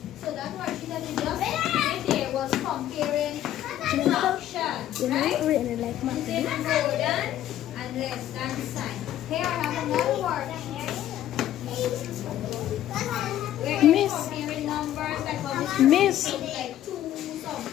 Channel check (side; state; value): right; quieter; 12.3 dB